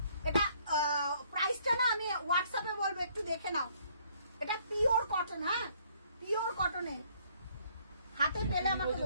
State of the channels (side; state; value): both; inverted; correlation -0.64